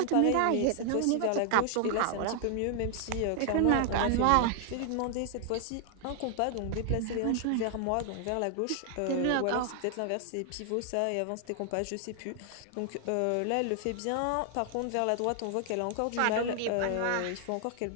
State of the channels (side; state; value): both; different; correlation 0.00